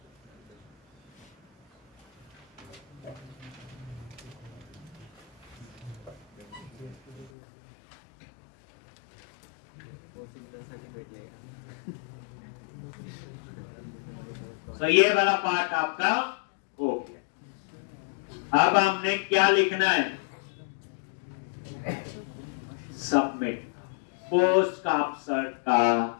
तो ये वाला पार्ट आपका हो गया। अब हमने क्या लिखना है, सबमिट, पोस्ट का अपसर्ट का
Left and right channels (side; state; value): right; drops out; at 7.3 s